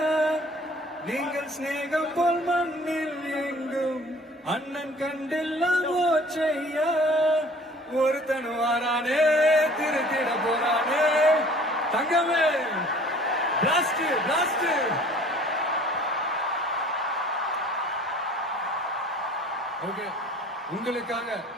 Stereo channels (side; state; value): both; normal; correlation 0.50